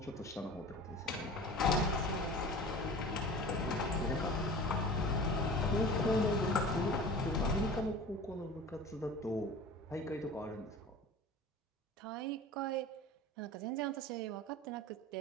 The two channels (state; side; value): normal; both; correlation 0.38